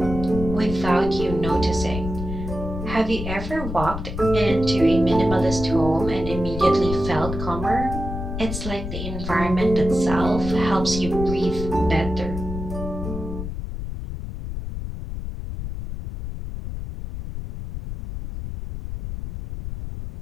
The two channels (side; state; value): left; noise; rumble, 7 dB below the sound